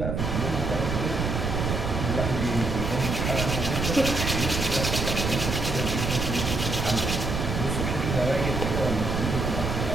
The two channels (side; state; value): right; noise; rumble, 1 dB below the sound